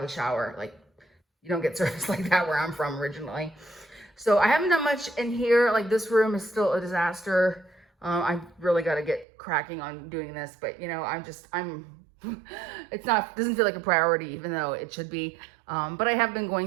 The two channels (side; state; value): left; drops out; at 9.2 s